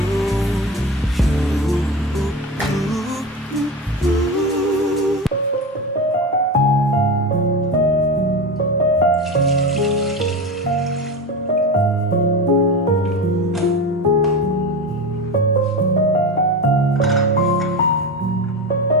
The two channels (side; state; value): both; normal; correlation 0.23